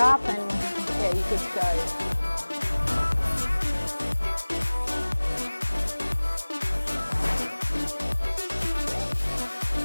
and yeah, you're good to go.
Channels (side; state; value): both; inverted; correlation -1.00